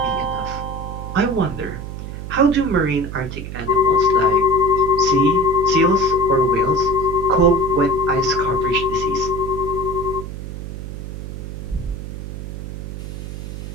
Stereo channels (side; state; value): right; noise; hum, 8 dB below the sound